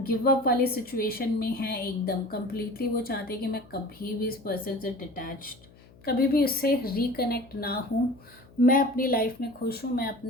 गिव अप वाली सिचुएशन में है एकदम कम्प्लीटली। वो चाहते हैं कि मैं कभी भी इस पर्सन से डिटैच्ड, कभी भी उससे रिकनेक्ट ना हूँ, मैं अपनी लाइफ में खुश हूँ, मैं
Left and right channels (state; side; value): noise; left; hum, 25 dB below the sound